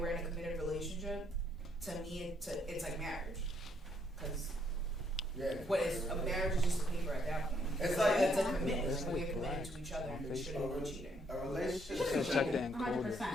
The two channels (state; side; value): normal; both; correlation 0.71